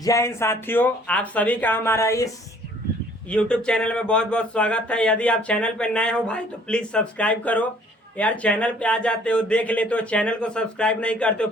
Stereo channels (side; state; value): both; normal; correlation 0.57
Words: हिंद साथियों, आप सभी का हमारा इस YouTube चैनल में बहुत बहुत स्वागत है। यदि आप चैनल पर नए हो भाई तो प्लीज़ सब्सक्राइब करो। यार चैनल पे आ जाते हो, देख लेते हो, चैनल को सब्सक्राइब नहीं करते हो,